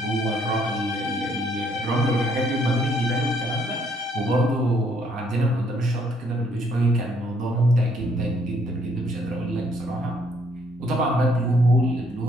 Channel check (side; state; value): both; normal; correlation 0.68